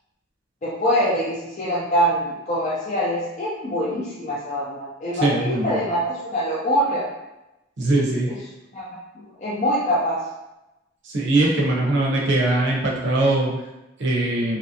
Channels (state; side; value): normal; both; correlation 0.38